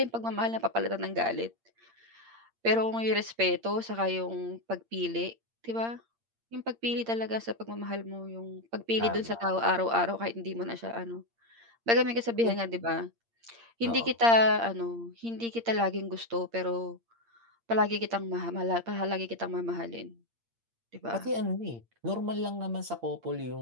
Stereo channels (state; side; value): late; left; 8.7 ms